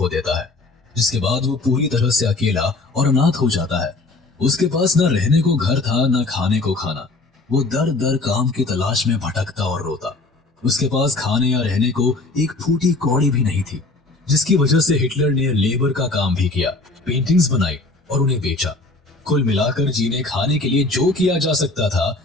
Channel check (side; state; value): right; quieter; 3.3 dB